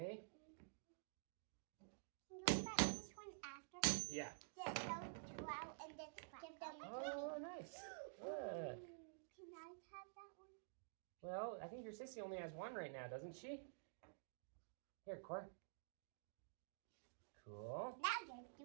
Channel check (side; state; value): left; silent; digital silence